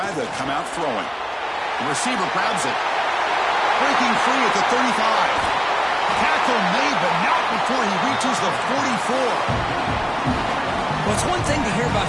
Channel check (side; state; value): both; identical; correlation 1.00